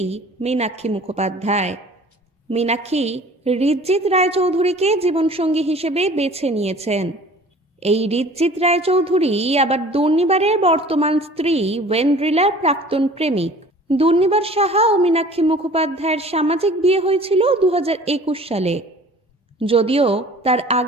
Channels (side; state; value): both; normal; correlation 0.47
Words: মীনাক্ষী মুখোপাধ্যায়। মীনাক্ষী ঋজ্জিত রায়চৌধুরীকে জীবনসঙ্গী হিসেবে বেছে নিয়েছেন। এই ঋজ্জিত রায়চৌধুরী আবার দুর্নিবারের বর্তমান স্ত্রী ওয়েন্ড্রিলার প্রাক্তন প্রেমিক। দুর্নিবার সাহা ও মীনাক্ষী মুখোপাধ্যায়ের সামাজিক বিয়ে হয়েছিল 2021 সালে। যদিও তার